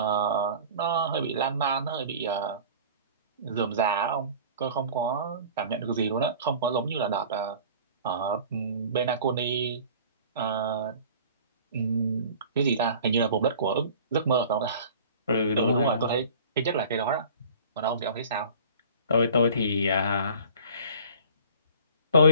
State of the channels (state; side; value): inverted; both; correlation -0.45